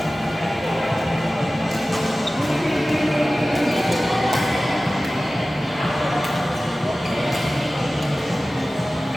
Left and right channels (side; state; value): both; normal; correlation 0.96